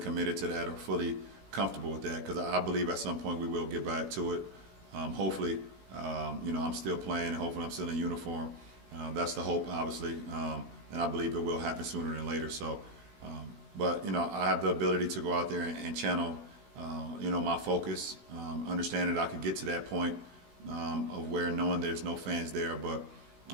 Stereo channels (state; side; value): late; left; 16 ms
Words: to that or fully comfortable with that, because I believe at some point we will get back to it. Hopefully, I'm still playing, and hopefully I'm still in uniform. That's the hope, obviously, and I believe it will happen sooner than later. So, but I have the ability to go out there and channel, my focus, understand that I could get to that point of where knowing there's no fans there, but